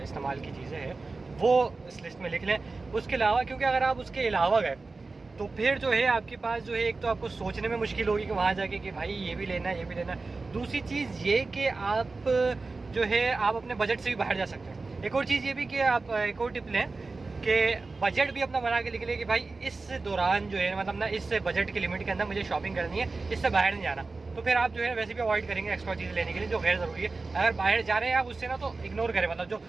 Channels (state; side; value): quieter; left; 3.8 dB